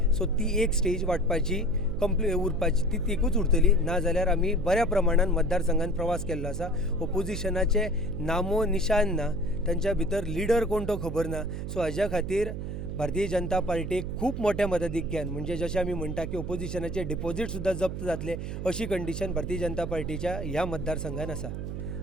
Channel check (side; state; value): right; noise; hum, 5 dB below the sound